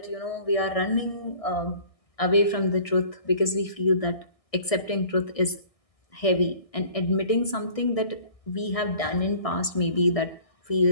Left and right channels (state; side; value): late; right; 1.6 ms